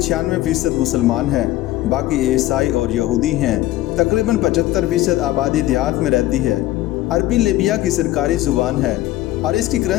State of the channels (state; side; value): quieter; right; 15.8 dB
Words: मुसलमान है, बाकी ईसाई और यहूदी हैं। तकरीबन 75% आबादी देहात में रहती है। अरबी लीबिया की सरकारी ज़ुबान है और इसकी